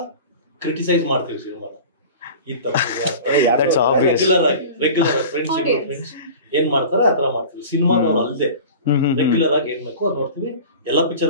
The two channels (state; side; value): inverted; both; correlation -0.38